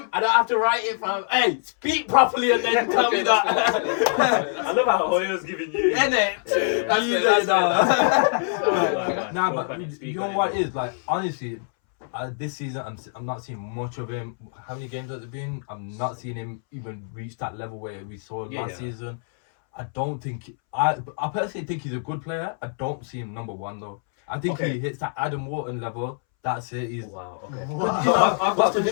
I don't have to write it from. Hey, speak properly and then tell me that. I love how Hoyo's giving you. Innit? That's Easy, it, that's no. Nah, Spoke but on it, speak you know on it. what it is like? Honestly, this season I'm not seeing much of him. How many games has it been? I'm not seeing him even reach that level where we saw Yeah, last yeah. season. I don't think I personally think he's a good player. I don't see him number 1 though. I think Okay. he hits that Adam Wharton level That's it. He's. Wow. Okay. Wow. So I've got What's a the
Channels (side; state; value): right; silent; 62 dB below the other